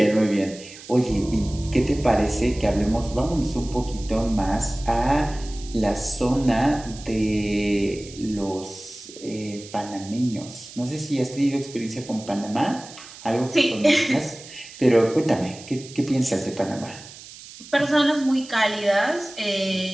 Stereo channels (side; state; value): right; noise; hiss, 17 dB below the sound